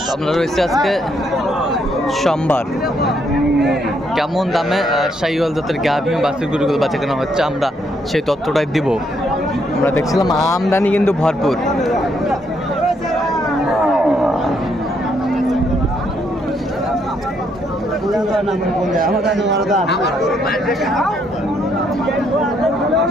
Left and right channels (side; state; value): both; normal; correlation 0.73